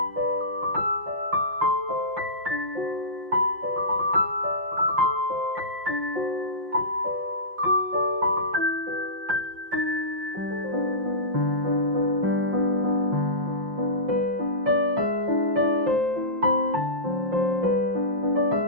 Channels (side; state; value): left; late; 5.6 ms